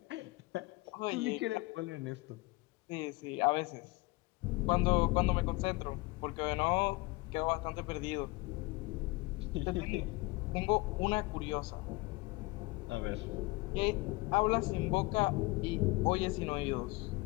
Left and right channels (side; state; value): right; quieter; 23.4 dB